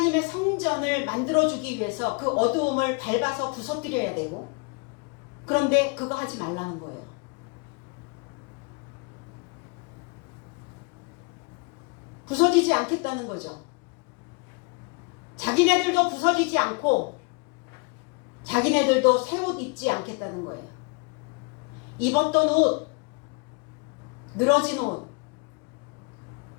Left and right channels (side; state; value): right; quieter; 31.6 dB